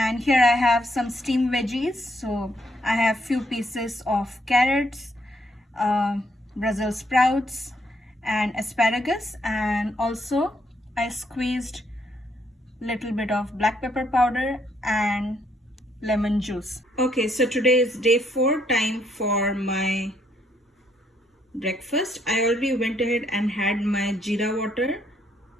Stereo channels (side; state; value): both; normal; correlation 0.71